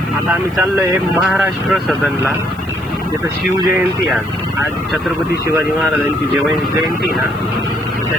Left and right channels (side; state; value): right; noise; hiss, 26 dB below the sound